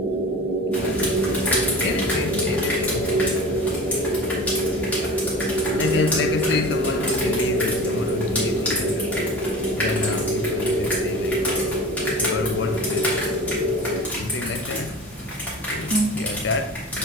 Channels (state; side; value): normal; both; correlation 0.36